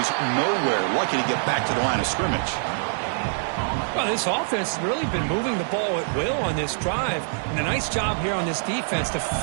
nowhere. Lucky to get back to the line of scrimmage. Well, this offense has really been moving the ball at will on this drive. And a nice job here on this defense to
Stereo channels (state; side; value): silent; left; 62 dB below the other